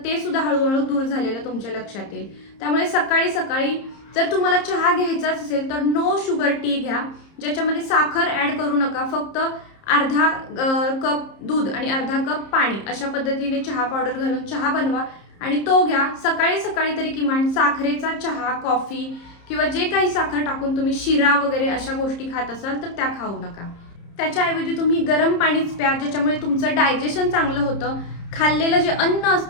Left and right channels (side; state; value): right; late; 30 ms